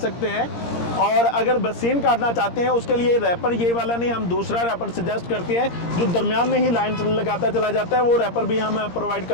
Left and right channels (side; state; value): right; late; 17 ms